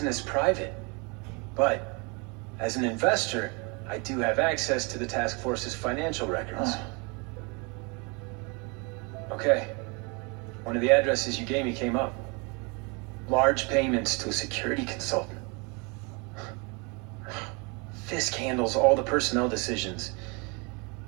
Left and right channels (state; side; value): quieter; left; 31.2 dB